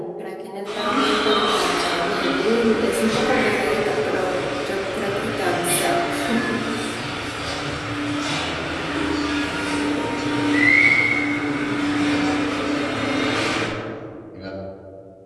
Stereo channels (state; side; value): identical; both; correlation 1.00